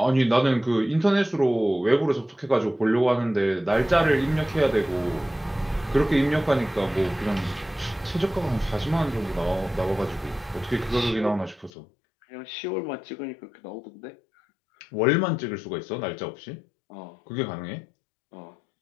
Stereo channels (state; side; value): drops out; right; at 11.7 s